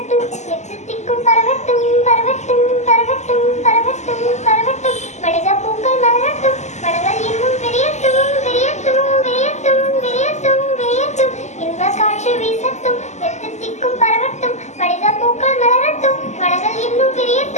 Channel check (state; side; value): late; right; 0.33 ms